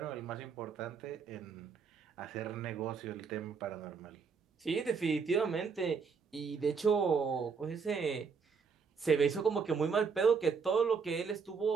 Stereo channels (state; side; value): quieter; left; 5.6 dB